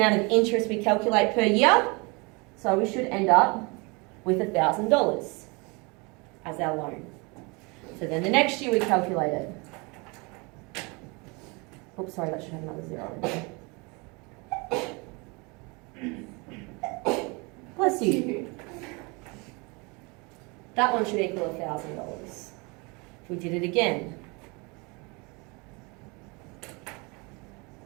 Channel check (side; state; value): left; quieter; 28.7 dB